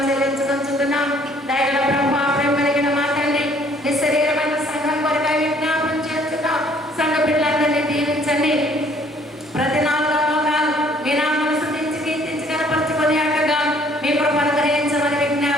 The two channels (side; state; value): both; normal; correlation 0.60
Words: చెల్లించుకుంటున్నాం. దయగల ప్రభువా, ప్రేమ కలిగిన మా తండ్రి, నీ శరీరమైన సంఘం కొరకై విజ్ఞాపనం చేస్తున్నాం. సంఘ బిడ్డలందరినీ దీవించండి. ప్రతి 4 లోకాలు మీ నామమును స్తుతించి కీర్తించి కనపరచుకొని అక్కగా మీ కృపను గ్రహించమని